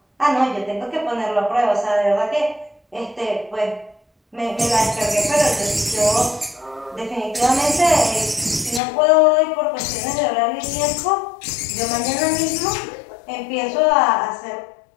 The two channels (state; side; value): drops out; right; at 8.8 s